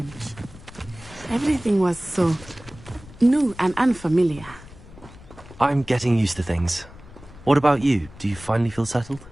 Everything was so new and unfamiliar. I'm getting used to things. What about you? Do you finally feel settled?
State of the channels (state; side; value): noise; left; rumble, 19 dB below the sound